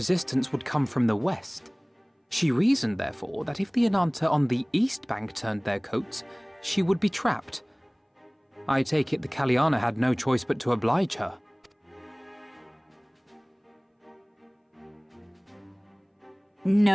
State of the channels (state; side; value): identical; both; correlation 1.00